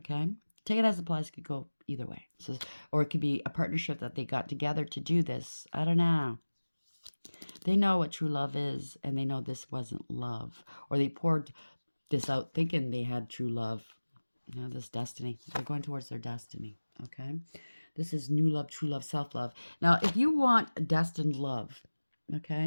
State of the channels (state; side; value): inverted; both; correlation -1.00